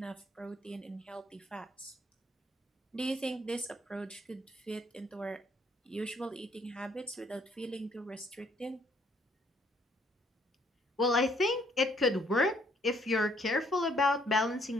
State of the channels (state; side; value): normal; both; correlation 0.66